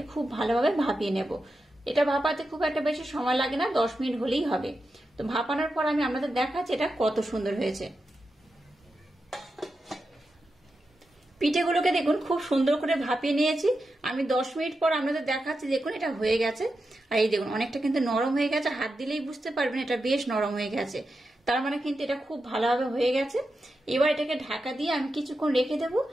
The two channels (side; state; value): both; normal; correlation 0.89